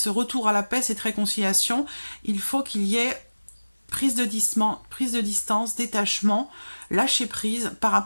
retour à la paix, cette réconciliation, il faut qu'il y ait prise de distance, détachement, lâcher prise par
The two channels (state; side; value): inverted; both; correlation -1.00